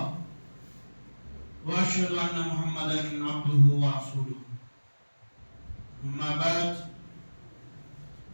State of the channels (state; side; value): inverted; both; correlation -1.00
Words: وأشهد أن محمدا عبده ورسوله أما بعد